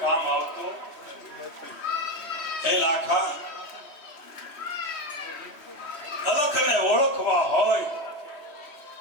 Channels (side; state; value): right; late; 3.0 ms